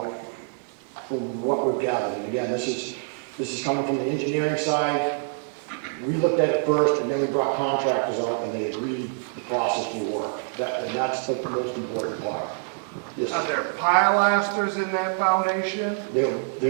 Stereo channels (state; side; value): silent; left; 61 dB below the other